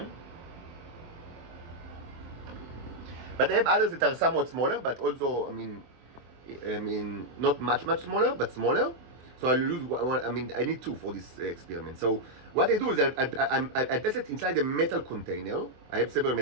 But I have others that are somewhat smaller, but also, not much smaller, but smaller. So I'll use one. I need two for this experiment. So what I do is I place it inside a metal container. I have several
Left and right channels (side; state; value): left; late; 24 ms